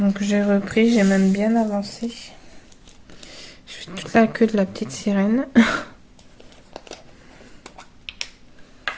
j'ai repris, j'ai même bien avancé. Je fais toute la queue de la petite sirène.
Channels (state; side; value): identical; both; correlation 1.00